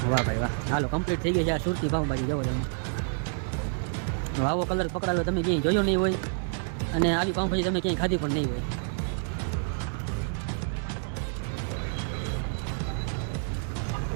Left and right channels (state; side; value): silent; left; digital silence